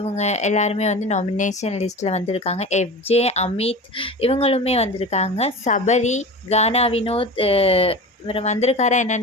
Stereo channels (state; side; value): normal; both; correlation 0.32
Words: எல்லாருமே வந்து நாமினேஷன் லிஸ்ட்டில் வந்திருக்காங்க. எஃப்ஜே, அமித் இவங்களுமே வந்திருக்காங்க. சபரி, கானா வினோத் இவர் வந்திருக்காரா